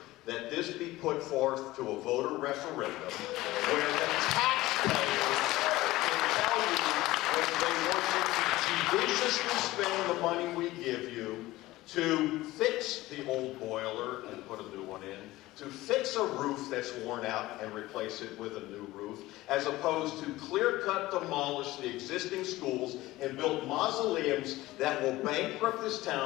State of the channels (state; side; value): quieter; right; 17.9 dB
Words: that this be put forth to a voter referendum where the taxpayers can tell you whether they want you to judiciously spend the money we give you to fix the old boiler and put a new one in, to fix a roof that's worn out and replace it with a new roof, as opposed to clear-cut demolish the existing schools and build mausoleums that will bankrupt this